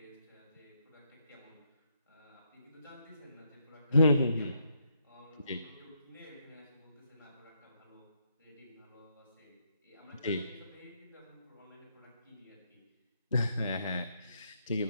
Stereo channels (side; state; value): both; inverted; correlation -0.76